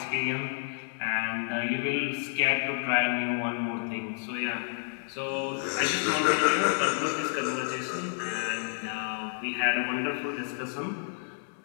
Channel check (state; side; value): silent; right; 58 dB below the other